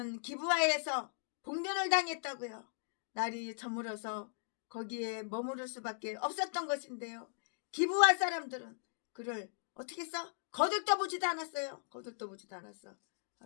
기브아에서 봉변을 당했다고요. 날이 저물어서 거기에 머무를 수밖에 없었던 것인데요. 기브아 사람들은 그를 어떻게 했어? 거들떠보지도 않았어요.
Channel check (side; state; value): right; silent; digital silence